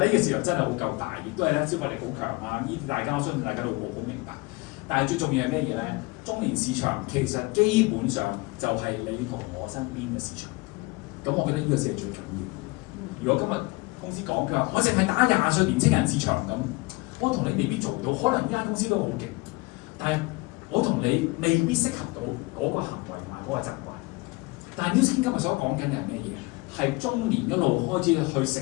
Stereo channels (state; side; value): quieter; right; 24.3 dB